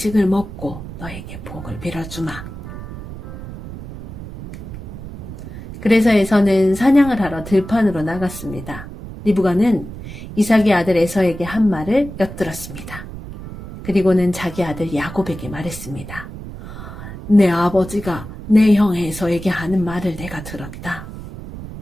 먹고 너에게 복을 빌어주마. 그래서 에서는 사냥을 하러 들판으로 나갔습니다. 리브가는 이삭의 아들 에서에게 한 말을 엿들었습니다. 그리고는 자기 아들 야곱에게 말했습니다. 내 아버지가 내 형 에서에게 하는 말을 내가 들었다.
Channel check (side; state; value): right; noise; rumble, 12 dB below the sound